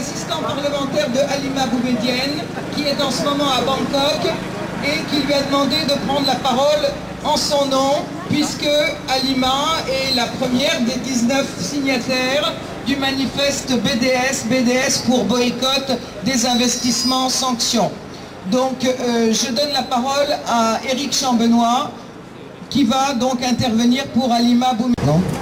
parlementaire de Halima Boumedienne, qui est en ce moment à Bangkok et qui lui a demandé de prendre la parole en son nom, puisque Halima est la première des 19 signataires du manifeste BDS pour boycott des investissements sanctions. Donc je donne la parole à Éric Chambenois, qui va donc intervenir pour Halima Boumedienne.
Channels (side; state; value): both; identical; correlation 1.00